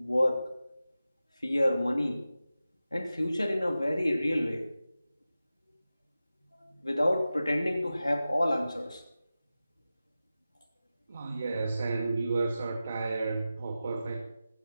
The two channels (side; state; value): both; inverted; correlation -0.94